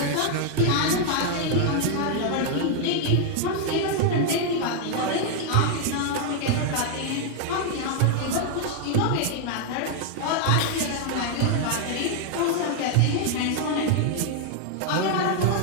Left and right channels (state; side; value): different; both; correlation 0.00